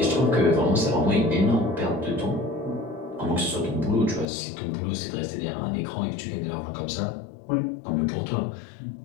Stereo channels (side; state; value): right; drops out; at 4.2 s